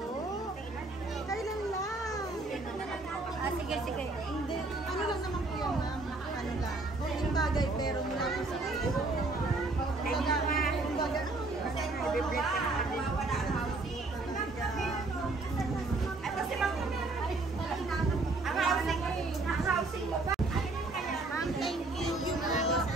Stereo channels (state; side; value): quieter; left; 3.2 dB